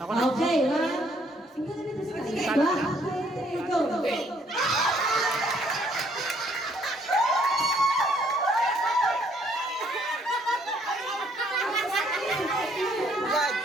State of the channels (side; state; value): both; normal; correlation 0.66